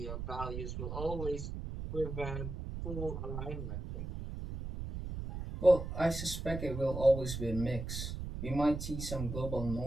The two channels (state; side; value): noise; right; rumble, 6 dB below the sound